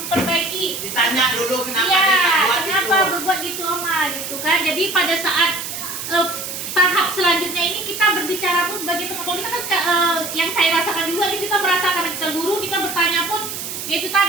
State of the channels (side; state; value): right; noise; hiss, 7 dB below the sound